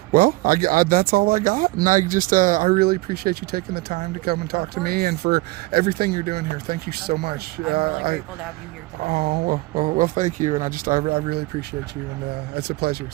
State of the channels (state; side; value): quieter; left; 20.8 dB